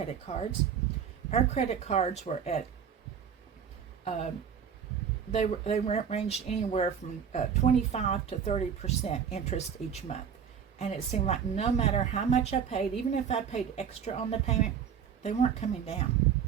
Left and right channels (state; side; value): quieter; left; 7.7 dB